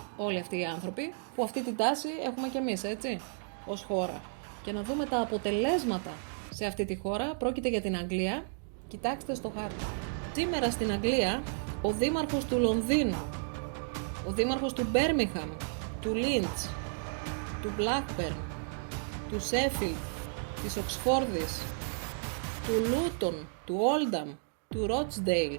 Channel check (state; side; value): silent; left; digital silence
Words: όλοι αυτοί οι άνθρωποι, που αυτή την τάση έχουμε κι εμείς, έτσι, ως χώρα. Και να δούμε τα αποτελέσματα σε αυτή τη χώρα. Πρόκειται για την Αγγλία. Κοιτάξτε στο χάρτη. Σήμερα στην Αγγλία, ο δήμαρχος του Λονδίνου, ο δήμαρχος του Μπέρμιγχαμ, του Λίντς, του Μπλάκμπερν, του Σέφιλντ, της Οξφόρδης, του Λούτον, του Όλνταμ, του Ρότσντεϊλ,